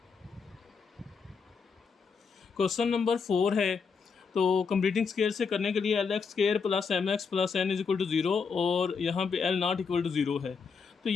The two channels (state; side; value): quieter; right; 5.5 dB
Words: क्वेश्चन नंबर 4 है, तो कंप्लीटिंग स्केयर से करने के लिए LX square plus MX plus N is equal to 0 और यहाँ पे L नॉट इक्वल टू 0 है। तो